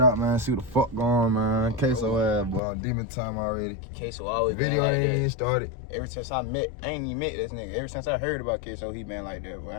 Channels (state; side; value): drops out; right; at 2.6 s